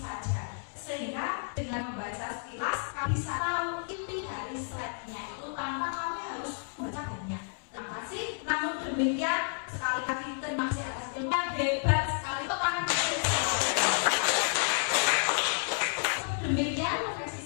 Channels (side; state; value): right; silent; 57 dB below the other